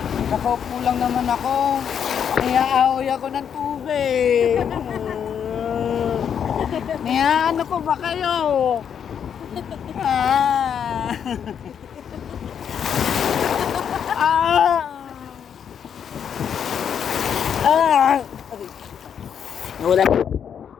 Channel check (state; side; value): quieter; right; 8.0 dB